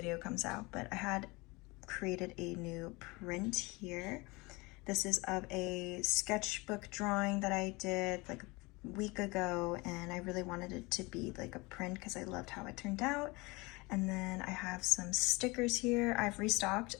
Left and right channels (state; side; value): quieter; right; 24.6 dB